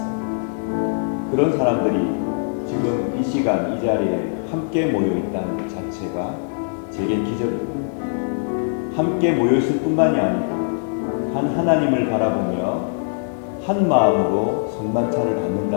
그런 사람들이 지금 이 시간 이 자리에 함께 모여 있다는 것 자체가 제겐 기적입니다. 함께 모여 있을 뿐만이 아니고 한 하나님을 바라보며 한 마음으로 성만찬을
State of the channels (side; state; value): right; silent; digital silence